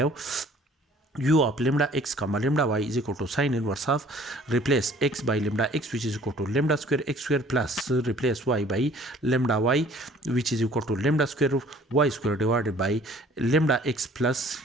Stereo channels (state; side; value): normal; both; correlation 0.54